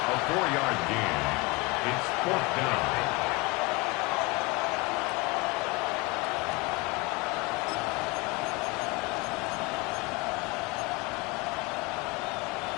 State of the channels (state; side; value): quieter; right; 24.6 dB